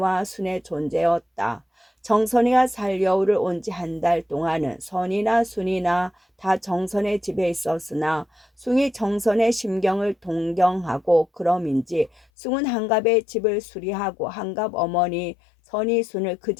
순의 존재였다. 정선이가 살려울을 온 지 한 달 동안은 선이나 순이나 다 정선의 집에 있었으나 숭이 정선의 심경을 동경하고 그럼인지 숭은 한갑의 집을 수리하고 한갑 어머니 선이 순을 그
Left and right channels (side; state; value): right; drops out; at 12.2 s